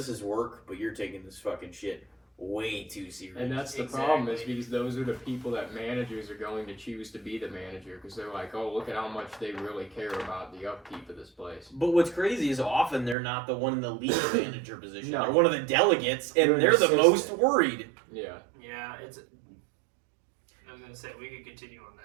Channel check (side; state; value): left; drops out; at 13.2 s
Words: is work, but you're taking this fucking shit way too serious. And that's the problem, is because those are the people that managers are going to choose to be the manager, because they're like, oh, look at how much they really care about the upkeep of this place. But what's crazy is often they're not the one in the lead manager position. No. They're one of the delegates, and They're they're the assistant. most worried. Yeah. Yeah, I was gonna say we could continue on